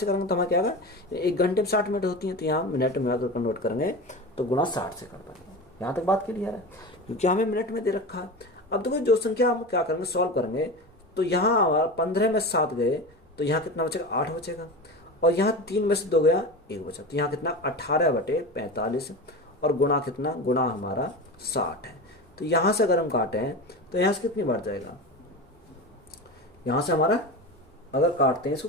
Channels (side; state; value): both; normal; correlation 0.27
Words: करेंगे तो हमारा क्या आएगा 1 घंटे में 60 मिनट होती है, तो यहाँ मिनट में अगर कन्वर्ट करेंगे तो गुना 60 से कर पाएंगे। यहाँ तक बात क्लियर है, क्योंकि हमें मिनट में दे रखा है। अब देखो जो संख्या हम क्या करेंगे सॉल्व करेंगे, तो यहाँ हमारा 15 में 7 गए तो यहाँ कितना बचेगा 8 बचेगा, और यहाँ 3 में से 2 गया 1 बचा, तो यहाँ कितना 18/45 और गुणा कितना, गुणा हमारा 60 है। तो यहाँ से अगर हम काटें तो यहाँ से कितनी बार जाएगा, यहाँ से हमारा अगर काटते हैं इसको